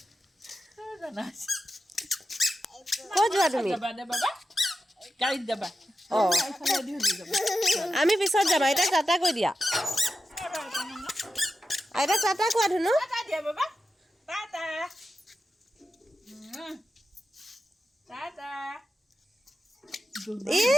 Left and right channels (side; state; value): both; normal; correlation 0.91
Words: ক'ত যোৱা তুমি আমি পিছত যাম আইতাক টাটা কৈ দিয়া আইতাক টাটা কোৱা ধুনু